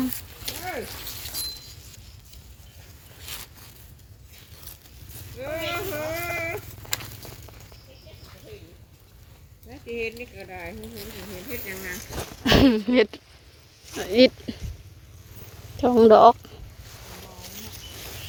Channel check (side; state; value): both; identical; correlation 1.00